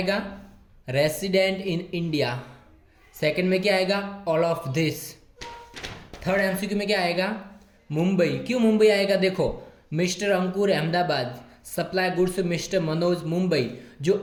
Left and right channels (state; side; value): identical; both; correlation 1.00